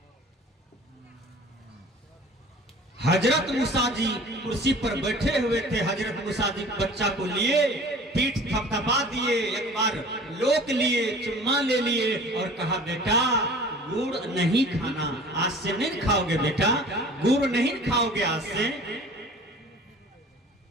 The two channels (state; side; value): normal; both; correlation 0.45